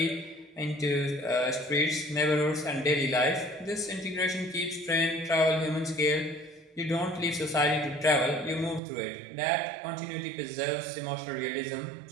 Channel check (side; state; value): left; drops out; at 8.8 s